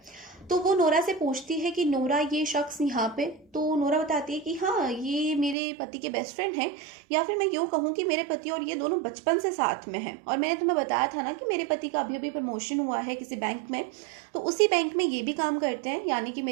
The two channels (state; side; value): drops out; left; at 5.6 s